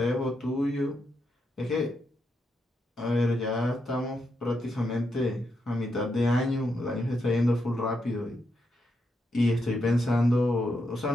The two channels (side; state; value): both; normal; correlation 0.82